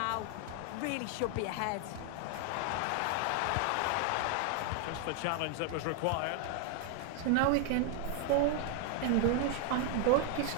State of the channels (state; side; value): different; both; correlation 0.00